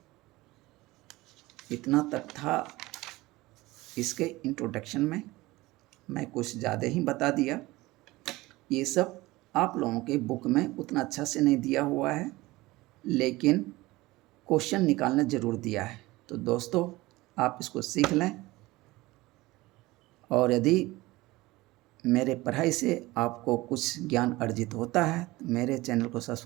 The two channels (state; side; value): quieter; left; 19.7 dB